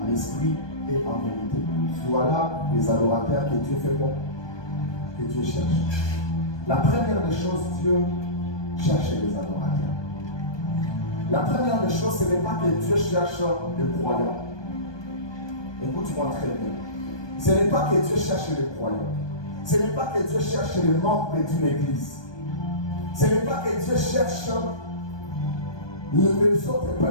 en esprit et en vérité. Voilà les adorateurs que Dieu fait bon, que Dieu cherche. La première des choses, Dieu cherche les adorateurs. La première des choses, ce n'est pas que Dieu cherche les croyants. Écoute-moi très bien. Ce n'est pas que Dieu cherche les croyants. Ce n'est pas que Dieu cherche les membres d'une église. Ce n'est pas que Dieu cherche les autres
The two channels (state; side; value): late; right; 1.2 ms